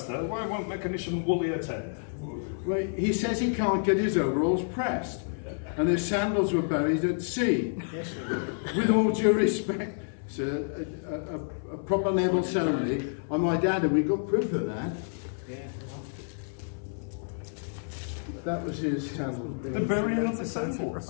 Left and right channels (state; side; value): silent; right; 58 dB below the other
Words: why won't mechanician Woolley attend? Well, he says he can't get his overalls pressed, and his sandals were buried at sea. Yes, With all due respect, sir, a proper naval ceremony, on my dad, and we got proof of that. yeah. That was his sandals. The burying of the sandals.